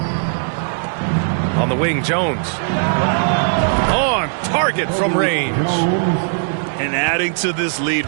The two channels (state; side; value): silent; left; digital silence